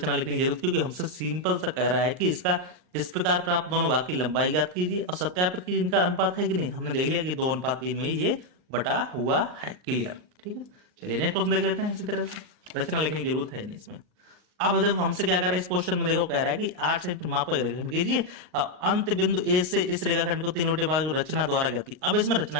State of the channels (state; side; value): late; left; 39 ms